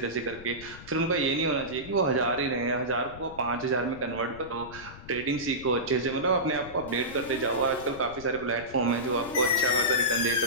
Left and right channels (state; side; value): noise; left; rumble, 17 dB below the sound